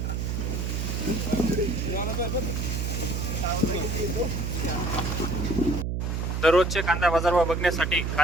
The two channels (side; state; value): right; noise; hum, 1 dB below the sound